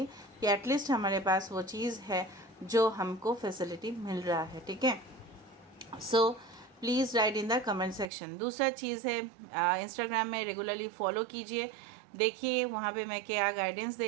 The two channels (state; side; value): drops out; left; at 8.1 s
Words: कि एटलीस्ट हमारे पास वो चीज़ है जो हमको फैसिलिटी मिल रहा है। ठीक है, so please write in the comment section. दूसरा चीज़ है इंस्टाग्राम में रेगुलरली फॉलो कीजिए, देखिए वहाँ पे मैं क्या गाइडेंस